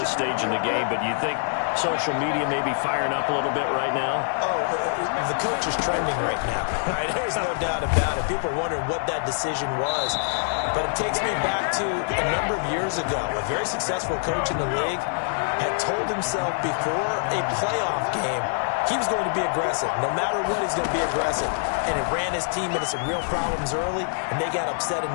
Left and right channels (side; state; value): right; silent; digital silence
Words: stage in the game, but you think social media may be firing up a little bit right now? Oh, the coach is trending right now. Right? There's no doubt about it. People are wondering what that decision was. But it takes me back to a number of years ago. A very successful coach in the league had told himself before a playoff game he was going to be aggressive. No matter what, he's going to be aggressive. And it ran his team into some real problems early, and they got upset in